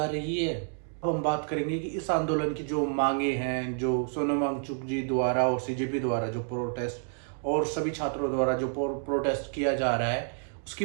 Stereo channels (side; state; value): left; silent; 58 dB below the other